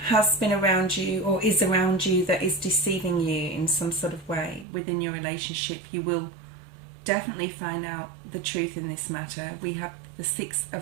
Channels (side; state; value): left; drops out; at 4.7 s